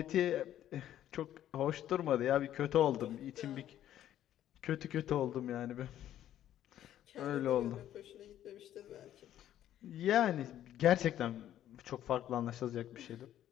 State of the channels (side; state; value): right; quieter; 11.8 dB